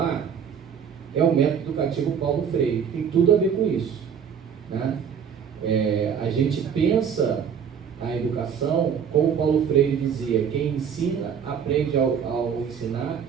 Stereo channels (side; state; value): left; quieter; 7.5 dB